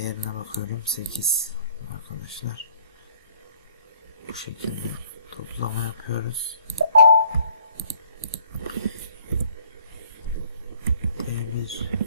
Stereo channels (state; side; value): inverted; both; correlation -0.59